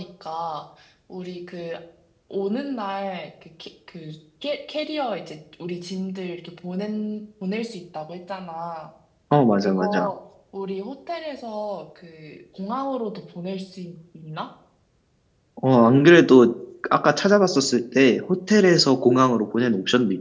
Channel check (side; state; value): both; identical; correlation 1.00